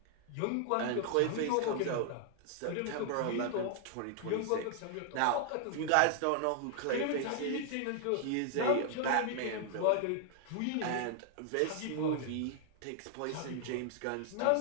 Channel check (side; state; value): both; different; correlation 0.00